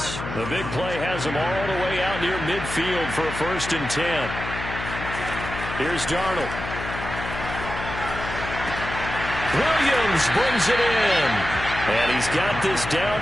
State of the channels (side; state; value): left; noise; hum, 8 dB below the sound